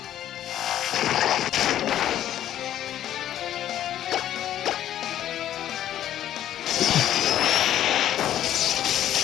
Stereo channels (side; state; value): right; quieter; 11.7 dB